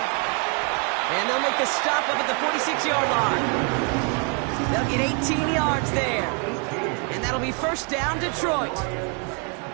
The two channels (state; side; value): quieter; left; 37.2 dB